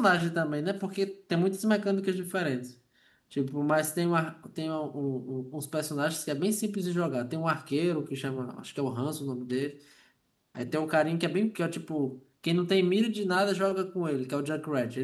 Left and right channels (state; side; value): identical; both; correlation 1.00